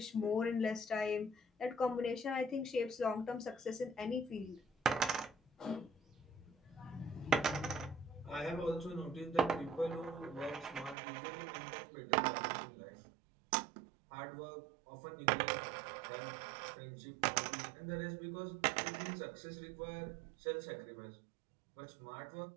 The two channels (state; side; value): drops out; left; at 11.0 s